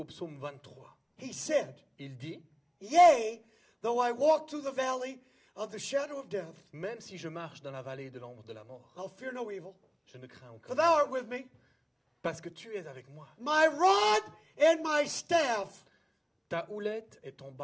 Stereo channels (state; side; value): identical; both; correlation 1.00